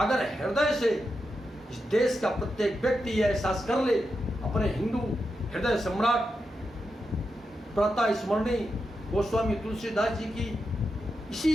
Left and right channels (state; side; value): normal; both; correlation 0.87